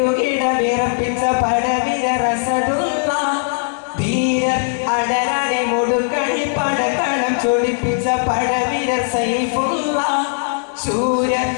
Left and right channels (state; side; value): silent; right; digital silence